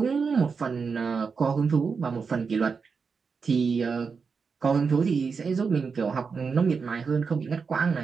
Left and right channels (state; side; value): quieter; left; 5.3 dB